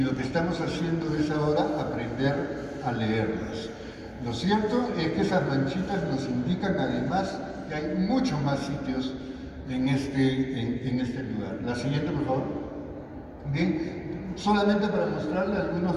que estamos haciendo es ahora aprender a leerlas. Lo cierto es que esas manchitas nos indican además que hay muchos más sitios en este lugar. La siguiente, por favor. Bien, solamente para mostrarle algunos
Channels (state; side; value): identical; both; correlation 1.00